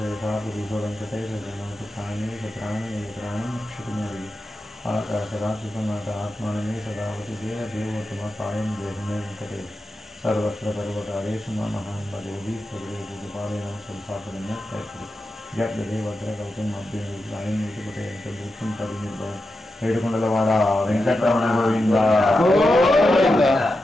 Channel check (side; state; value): both; normal; correlation 0.89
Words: वेंकटेश जनोतु प्राणेश प्राणनेत्राणं क्षितिमेवि आकाशरात्रिसमात आत्मानमे सदावति देवदेवोत्तमकायं देहमे वेंकटेश सर्वत्र सर्वकारेषु महान् भजेवि सर्वेषु संस्थापनम् जगदेवद्रकवचं अभ्यनुग्रहं युतिपतेन परिनिर्भय ఏడుకొండలవాడ వెంకటరమణ గోవింద గోవింద